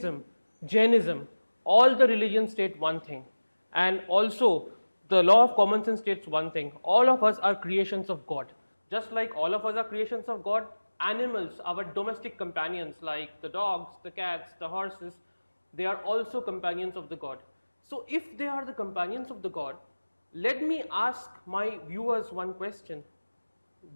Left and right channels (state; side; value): inverted; both; correlation -1.00